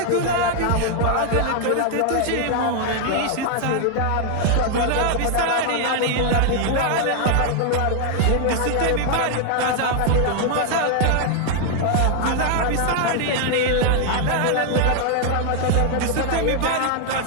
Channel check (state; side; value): different; both; correlation 0.00